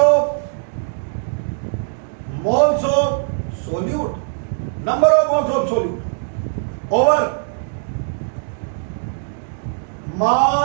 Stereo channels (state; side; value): silent; left; digital silence